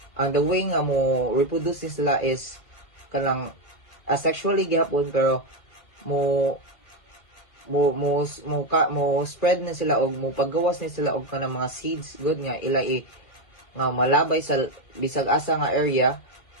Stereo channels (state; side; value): late; right; 1.9 ms